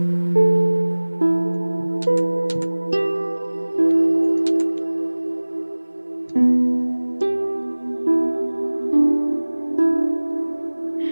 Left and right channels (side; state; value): both; inverted; correlation -1.00